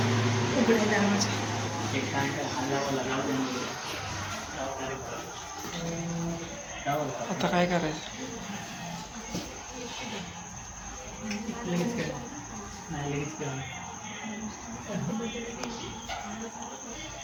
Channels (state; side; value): identical; both; correlation 1.00